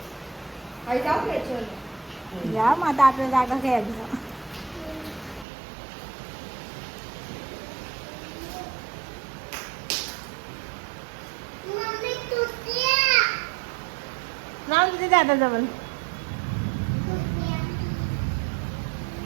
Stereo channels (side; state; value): left; drops out; at 5.5 s